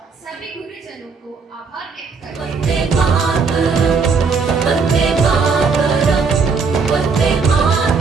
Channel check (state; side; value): quieter; left; 5.0 dB